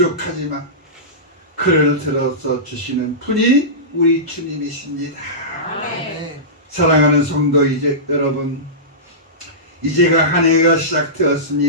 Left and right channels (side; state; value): both; normal; correlation -0.19